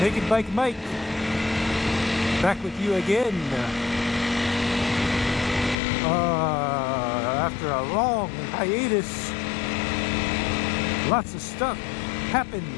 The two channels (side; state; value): right; drops out; at 5.8 s